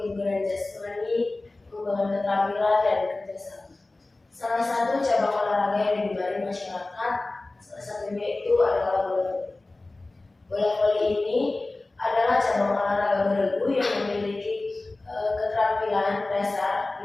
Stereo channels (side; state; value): right; quieter; 3.1 dB